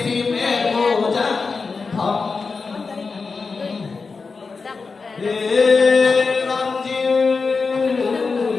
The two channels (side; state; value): right; quieter; 4.5 dB